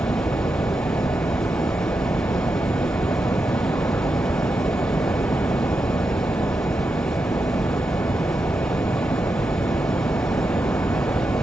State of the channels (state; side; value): normal; both; correlation 0.87